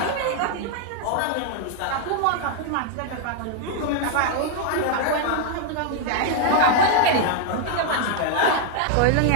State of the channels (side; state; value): both; different; correlation 0.00